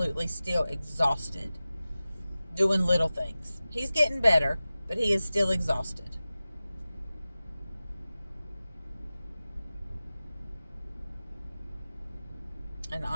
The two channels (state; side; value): inverted; both; correlation -0.96